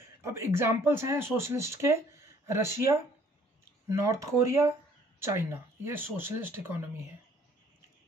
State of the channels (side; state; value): both; normal; correlation 0.59